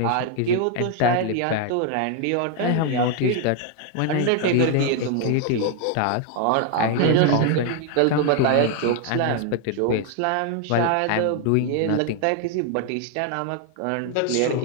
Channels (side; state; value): both; different; correlation 0.00